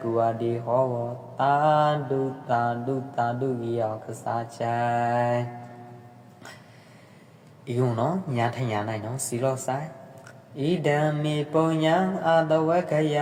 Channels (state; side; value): identical; both; correlation 1.00